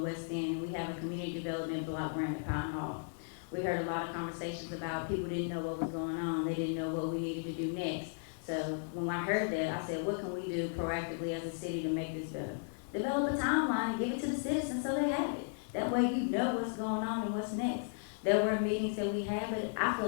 End, and we have a community development block grant at Pine Hall. We heard a lot of conversations about people didn't know what was going on, they didn't know what we needed to do next. So when I heard that, I said, what can we do proactively as a city to make this better? Develop a timeline and give it to the citizens so they have it. That way you know what's going on and what's next. There were meetings that we had, but I feel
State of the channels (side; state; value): right; silent; digital silence